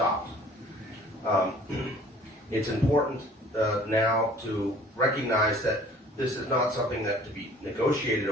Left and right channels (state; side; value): normal; both; correlation 0.52